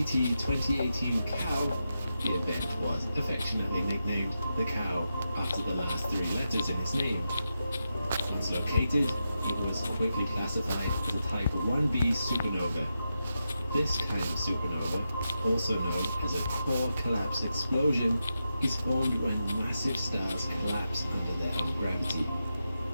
COW, the event was affectionately nicknamed the COW after the last 3 letters in its name. Once located, it was quickly classified as a Type 1b supernova. This kind of supernova, also known as a core collapse explosion, is formed when massive stars collapse under their own gravity.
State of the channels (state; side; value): inverted; both; correlation -0.88